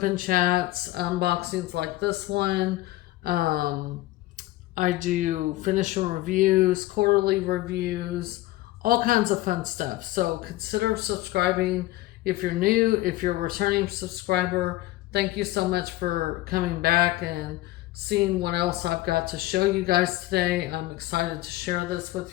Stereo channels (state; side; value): quieter; right; 17.1 dB